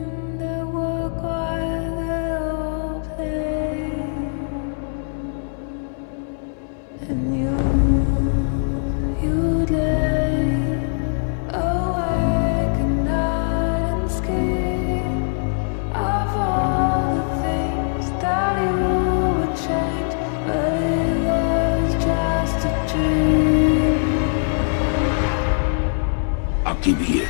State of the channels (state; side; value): silent; right; 60 dB below the other